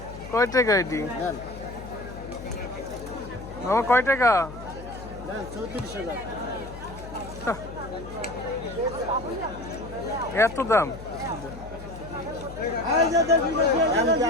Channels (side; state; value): left; noise; hum, 13 dB below the sound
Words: কয় টাকা এটি আমার? কয় টাকা? 34,000। এত দাম?